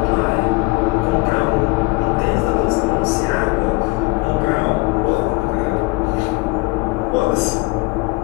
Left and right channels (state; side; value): quieter; right; 24.3 dB